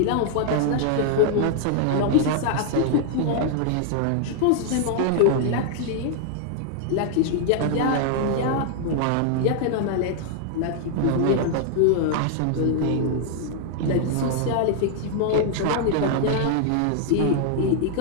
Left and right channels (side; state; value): both; different; correlation 0.00